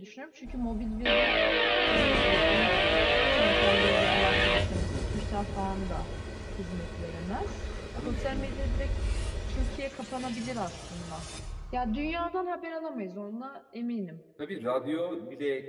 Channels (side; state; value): both; identical; correlation 1.00